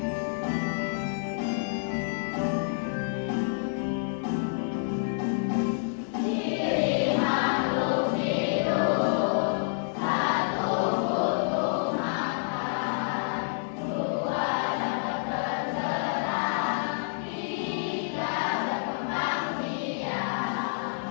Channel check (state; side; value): silent; right; digital silence